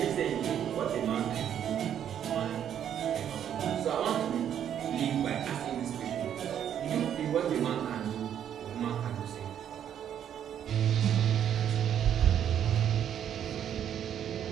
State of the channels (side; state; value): left; quieter; 9.6 dB